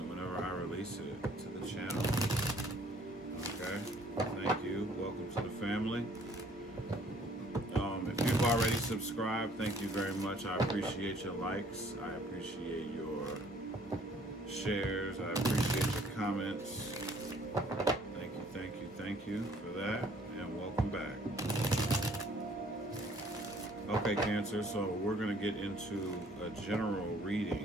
whenever I release it to the channel. Okay? Thank you. Welcome to the family. If you've already subscribed, thank you very much. I appreciate your likes. I appreciate your shares. I appreciate your comments. Thank you, thank you, thank you for that. And welcome back. Okay, Cancer, so we're going to get into a general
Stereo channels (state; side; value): normal; both; correlation 0.59